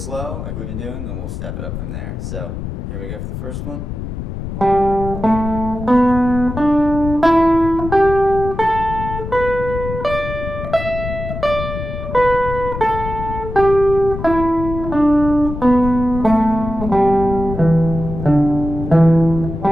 like we've been doing, then we'll step it up from there. So here we go for the first one.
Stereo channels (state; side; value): noise; left; rumble, 7 dB below the sound